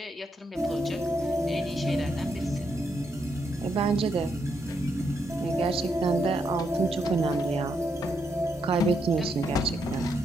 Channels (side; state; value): both; normal; correlation 0.79